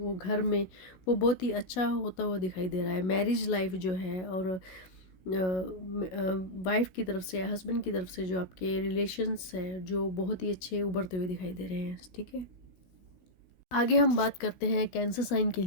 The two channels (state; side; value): late; right; 16 ms